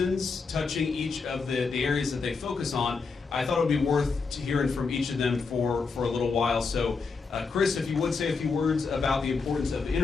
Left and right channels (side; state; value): right; quieter; 4.7 dB